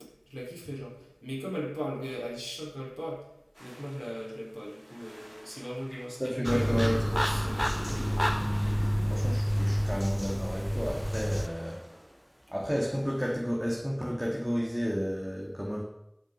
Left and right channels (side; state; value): both; identical; correlation 1.00